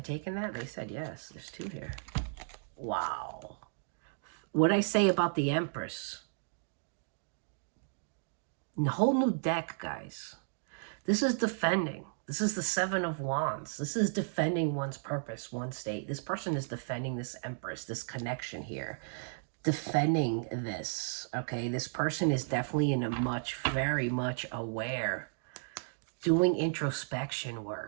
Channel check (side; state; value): left; silent; digital silence